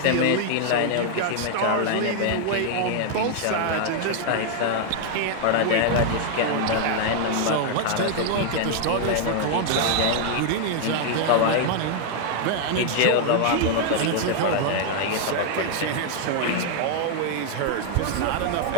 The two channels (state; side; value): different; both; correlation 0.00